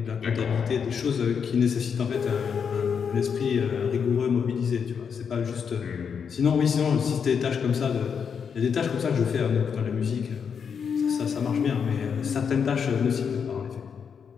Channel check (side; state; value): right; quieter; 6.7 dB